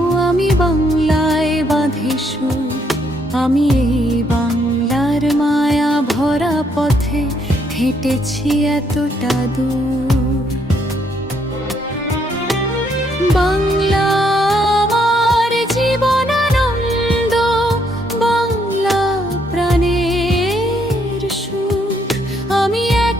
আমি বাংলায় বাঁধি সুর, আমি এই বাংলার মায়া ভরা পথে হেঁটেছি এতটা দূর। বাংলা আমার জীবনানন্দ, বাংলা প্রাণের সুখ। আমি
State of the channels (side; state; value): both; normal; correlation 0.72